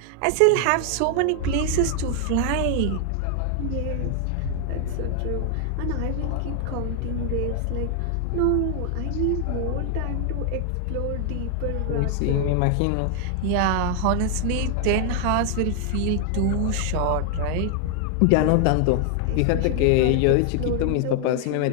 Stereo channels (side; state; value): both; different; correlation 0.00